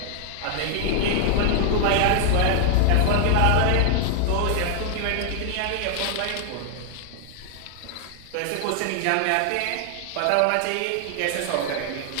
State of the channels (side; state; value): both; different; correlation 0.00